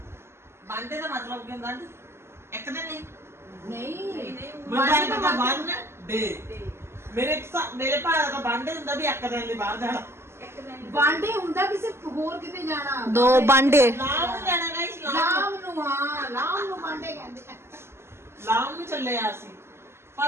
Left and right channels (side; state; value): left; late; 0.12 ms